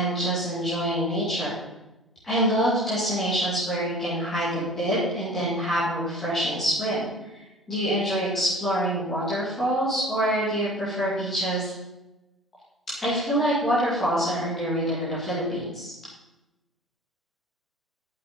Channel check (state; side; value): normal; both; correlation 0.43